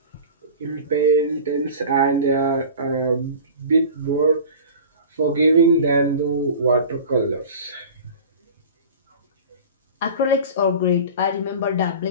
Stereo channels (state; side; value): inverted; both; correlation -0.38